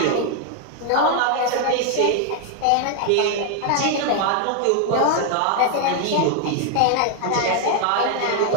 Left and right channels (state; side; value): different; both; correlation 0.00